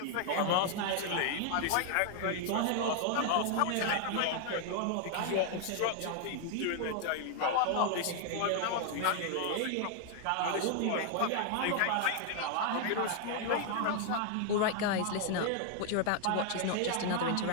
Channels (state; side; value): different; both; correlation 0.00